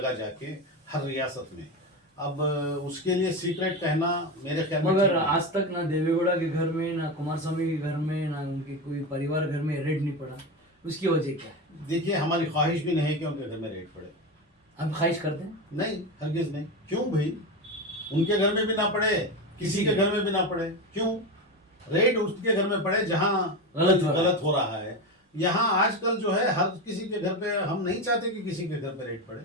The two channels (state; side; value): normal; both; correlation 0.18